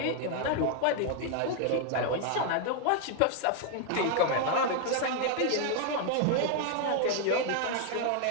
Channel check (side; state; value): both; different; correlation 0.00